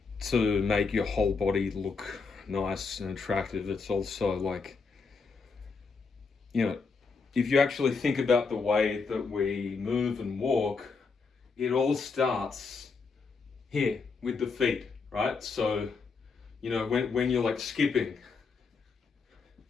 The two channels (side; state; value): right; quieter; 4.8 dB